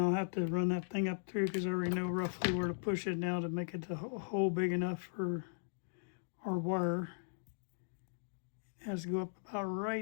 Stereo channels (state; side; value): silent; right; digital silence